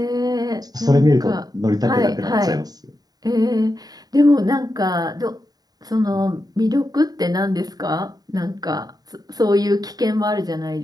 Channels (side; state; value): left; late; 0.18 ms